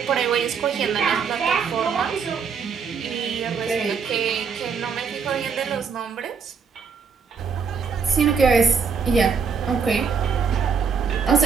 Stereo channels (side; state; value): left; quieter; 5.9 dB